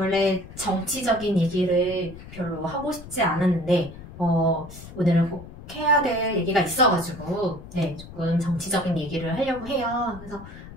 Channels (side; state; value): left; noise; rumble, 15 dB below the sound